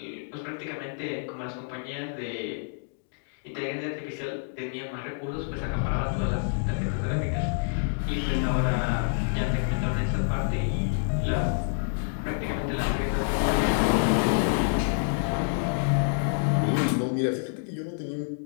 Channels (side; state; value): right; silent; digital silence